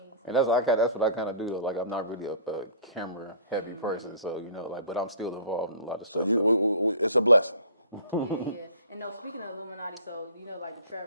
And that's what I kind of do. Like, I'm not really a camera heavy person, so but I'm still involved in a lot of stuff. So it's a blessing. Yeah. And no, speaking of Illuminati, so like the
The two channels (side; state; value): both; inverted; correlation -0.46